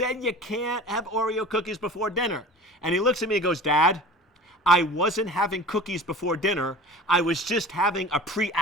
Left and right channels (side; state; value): both; normal; correlation 0.40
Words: you can't have Oreo cookies before dinner. And he looks at me and goes, Dad, I wasn't having cookies before dinner. I was just having a